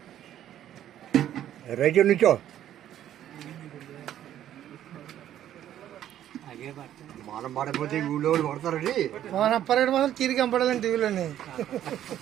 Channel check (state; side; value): quieter; left; 11.5 dB